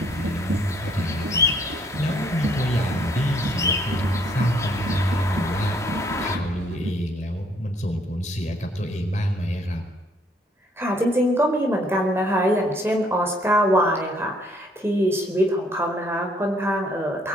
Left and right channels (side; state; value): both; normal; correlation 0.65